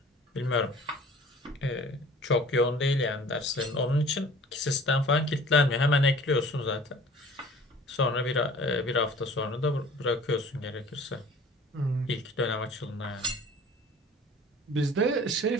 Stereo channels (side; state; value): both; normal; correlation 0.47